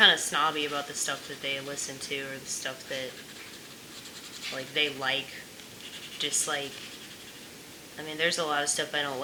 of snobby about the stuff that they listen to or the stuff that, like, they like, dislike. I mean, there's a lot of stuff I don't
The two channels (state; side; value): identical; both; correlation 1.00